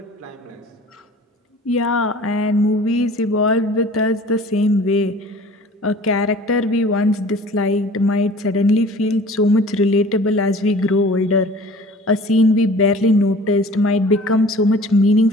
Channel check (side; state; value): both; normal; correlation 0.46